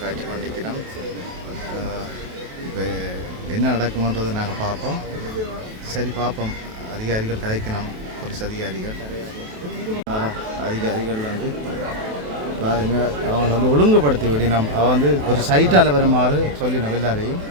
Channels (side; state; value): left; late; 28 ms